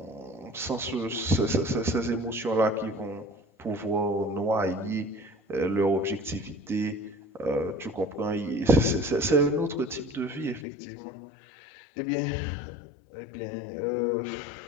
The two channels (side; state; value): right; drops out; at 10.7 s